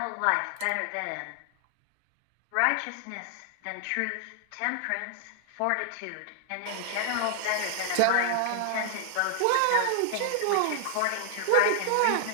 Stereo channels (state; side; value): different; both; correlation -0.01